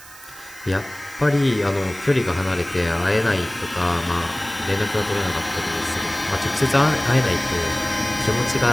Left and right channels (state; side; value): noise; right; hiss, 19 dB below the sound